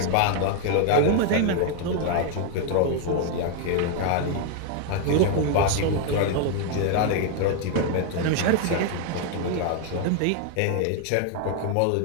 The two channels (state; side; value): different; both; correlation 0.01